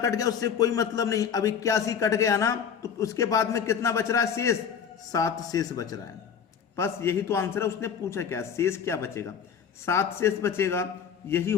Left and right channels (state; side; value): quieter; right; 7.4 dB